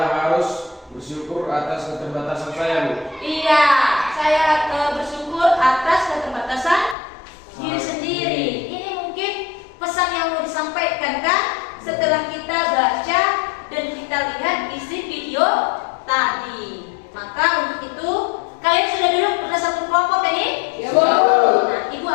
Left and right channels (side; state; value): right; drops out; at 7.0 s